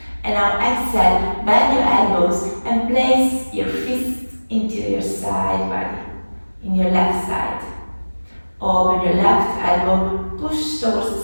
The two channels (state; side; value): inverted; both; correlation -1.00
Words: And now exhale, bend your elbows and place your fist into your side body, in your left side. Open your left elbow, push towards